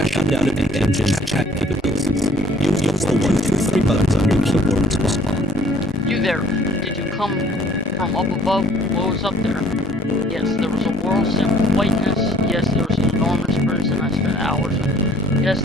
out of the engine's chat capabilities. Use the 1, 2, 3 buttons on your keyboard to respond. You there, did you come from up above? What was up there? Yes, there was a world set with whiteness. Yes, there was an enormous person I spent hours with. Yes,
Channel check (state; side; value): normal; both; correlation 0.58